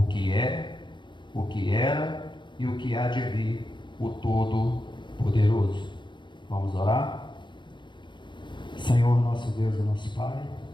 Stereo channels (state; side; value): late; right; 0.23 ms